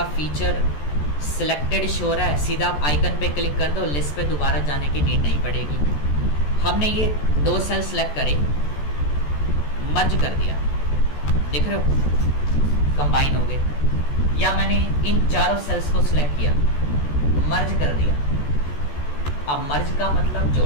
फीचर सिलेक्टेड शो रहा है। सीधा आप आइकन पे क्लिक कर दो, लिस्ट पे दोबारा जाने की नीड नहीं पड़ेगी। हमने ये 2 सेल सेलेक्ट करे, मर्ज कर दिया, देख रहे हो कंबाइन हो गए। या मैंने इन चारों सेल्स को सिलेक्ट किया, मर्ज कर दिया। अब मर्ज का मतलब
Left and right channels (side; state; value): right; late; 14 ms